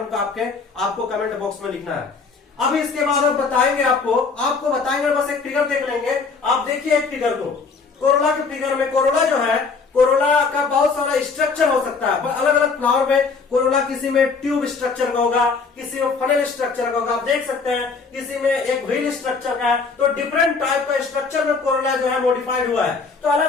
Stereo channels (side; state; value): right; quieter; 4.7 dB